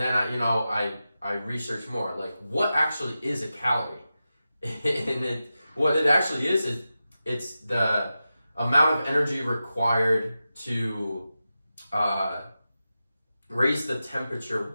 I researched more, like what actually is a calorie? And what it actually is it's the amount of energy required to raise the temperature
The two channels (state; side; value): inverted; both; correlation -0.92